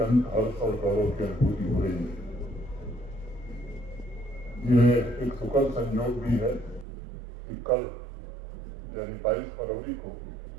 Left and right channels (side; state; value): left; drops out; at 6.9 s